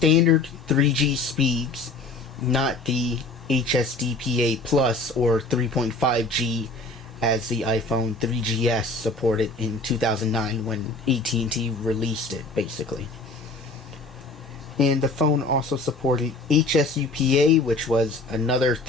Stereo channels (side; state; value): right; quieter; 3.3 dB